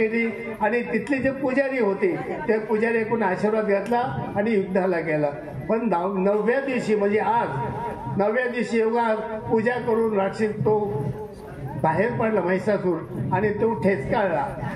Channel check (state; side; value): identical; both; correlation 1.00